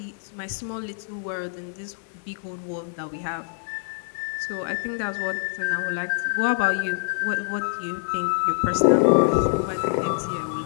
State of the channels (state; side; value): silent; right; digital silence